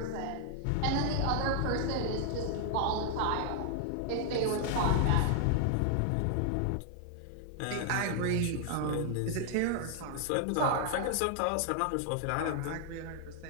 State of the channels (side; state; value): both; different; correlation 0.00